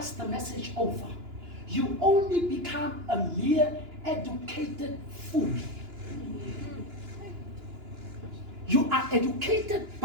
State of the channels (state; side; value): late; left; 2.9 ms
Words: the message over. You only become a mere educated fool. You are educated,